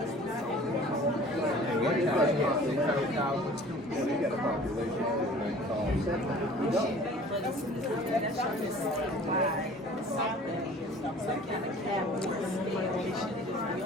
And one time he had 600,000 students. They got a population of like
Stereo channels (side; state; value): both; normal; correlation 0.47